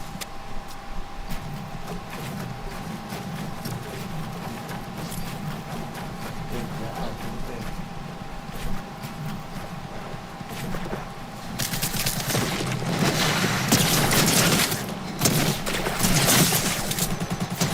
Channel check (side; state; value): both; identical; correlation 1.00